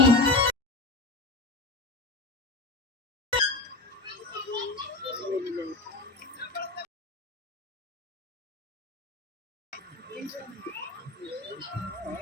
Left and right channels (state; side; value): quieter; right; 3.1 dB